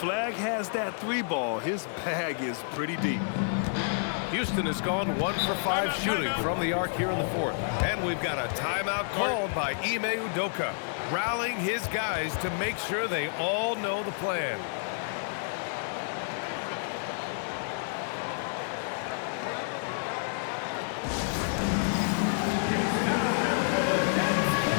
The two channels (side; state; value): right; silent; digital silence